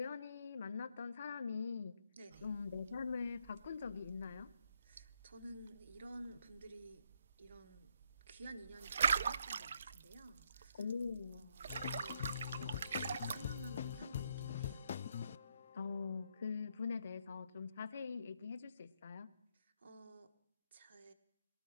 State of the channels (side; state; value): both; inverted; correlation -0.75